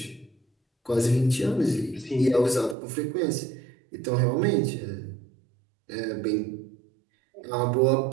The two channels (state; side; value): drops out; left; at 2.8 s